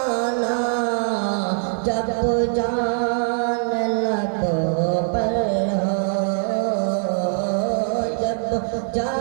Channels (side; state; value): left; silent; 64 dB below the other